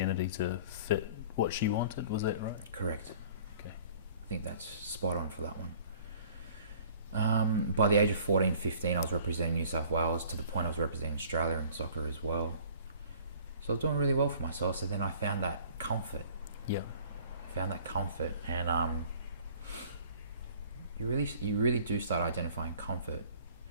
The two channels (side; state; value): both; inverted; correlation -0.51